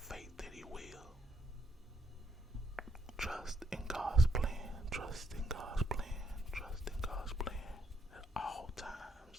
that He will. Trust in God's plan. Trust in God's plan. Trust in God's plan. At all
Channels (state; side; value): normal; both; correlation 0.75